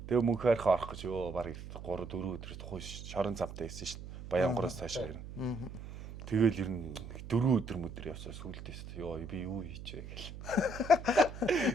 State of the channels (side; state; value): right; noise; hum, 11 dB below the sound